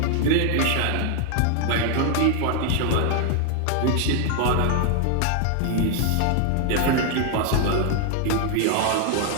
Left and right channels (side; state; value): both; different; correlation 0.00